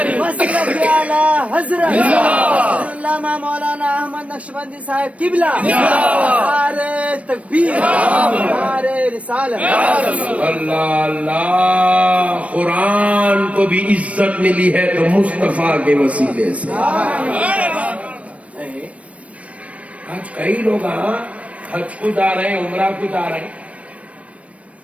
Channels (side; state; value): left; late; 0.064 ms